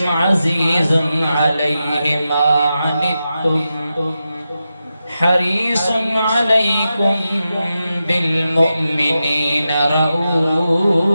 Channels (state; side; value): inverted; both; correlation -0.90